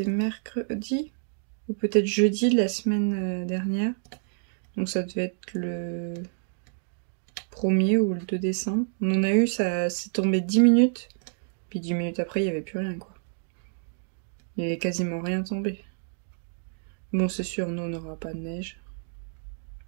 mercredi? Ou peut-être jeudi de la semaine dernière. Donc ça devait être le 1er ou le 2 décembre. On en a eu, ça s'est tombé 10 minutes. Puis 10 minutes après, il n'y avait plus rien, quoi. Il n'y avait quasiment rien tombé. Bon, c'est sûr, nous, on n'aura pas de neige.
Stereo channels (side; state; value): left; silent; digital silence